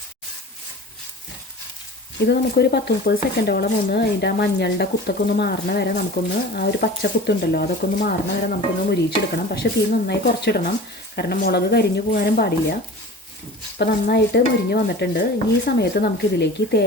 ഇത് നമുക്കൊരു 10-30 സെക്കൻഡോളം അതിൻ്റെ ആ മഞ്ഞളുടെ കുത്തൊക്കെ ഒന്ന് മാറണ വരെ നമുക്കൊന്ന് ആ ഒരു പച്ച കുത്തുണ്ടല്ലോ അതൊക്കെ ഒന്ന് മാറണ വരെ നമുക്കൊന്ന് മുരിച്ചെടുക്കണം. പക്ഷേ തീ നന്നായി കുറച്ചിടണം, കാരണം മുളക് കരിഞ്ഞു പോകാനും പാടില്ല. അപ്പോൾ നന്നായിട്ട് മുരിഞ്ഞ് വന്നിട്ടുണ്ട്. ഈ സമയത്ത് നമുക്കിതിലേക്ക്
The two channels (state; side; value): normal; both; correlation 0.38